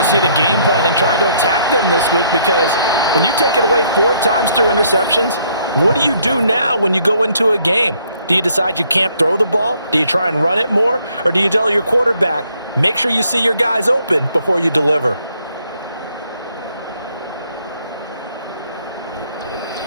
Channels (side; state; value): both; inverted; correlation -0.67